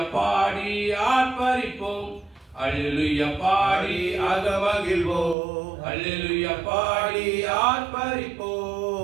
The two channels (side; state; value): left; drops out; at 5.4 s